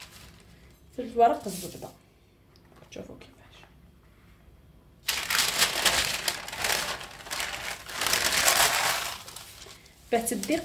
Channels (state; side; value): identical; both; correlation 1.00